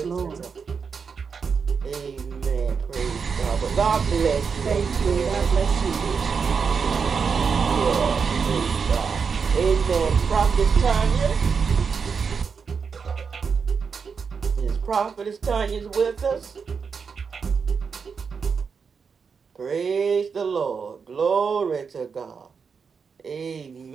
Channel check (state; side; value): quieter; left; 5.8 dB